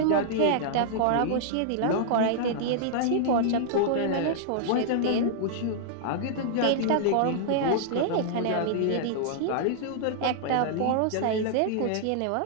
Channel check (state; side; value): different; both; correlation -0.01